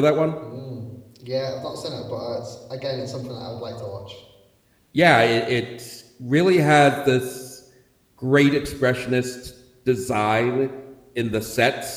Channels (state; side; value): identical; both; correlation 1.00